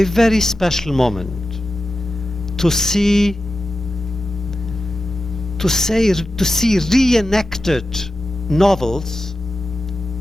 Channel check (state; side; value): normal; both; correlation 0.92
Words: very special moment to see reenacted novels